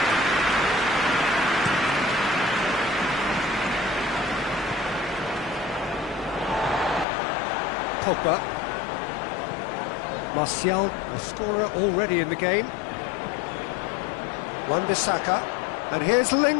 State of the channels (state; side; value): drops out; right; at 7.1 s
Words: Pogba. Martial, a scorer already in the game. Wan-Bissaka. And here's